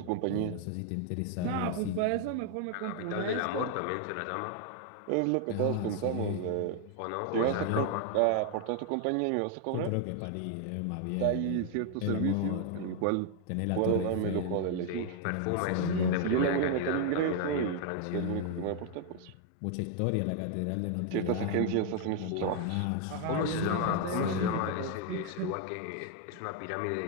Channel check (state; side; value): different; both; correlation 0.00